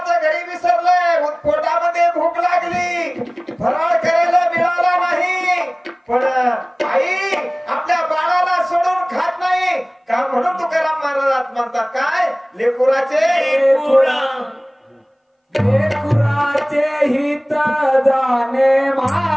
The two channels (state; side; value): identical; both; correlation 1.00